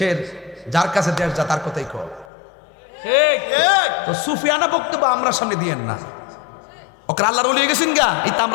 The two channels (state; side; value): drops out; right; at 2.2 s